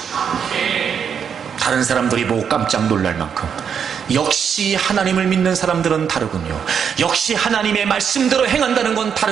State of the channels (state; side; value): quieter; left; 7.4 dB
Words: 다른 사람들이 보고 깜짝 놀랄 만큼 역시 하나님을 믿는 사람들은 다르군요. 역시 하나님의 말씀대로 행한다는 건